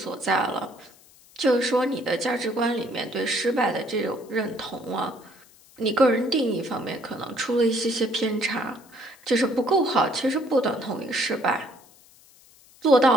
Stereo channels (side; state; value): left; noise; hiss, 26 dB below the sound